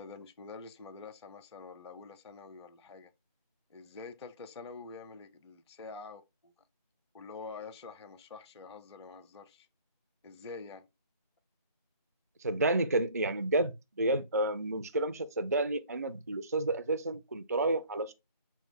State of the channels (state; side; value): inverted; both; correlation -0.52